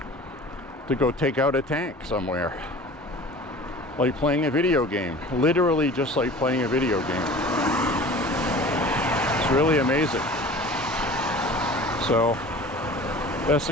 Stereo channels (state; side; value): normal; both; correlation 0.41